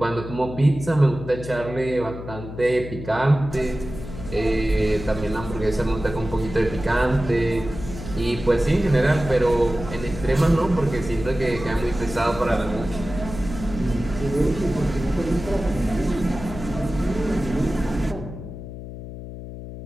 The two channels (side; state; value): left; noise; hum, 11 dB below the sound